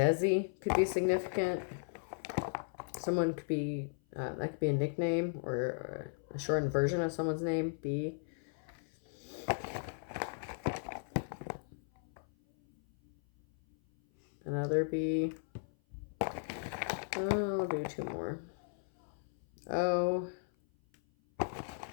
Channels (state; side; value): silent; right; 54 dB below the other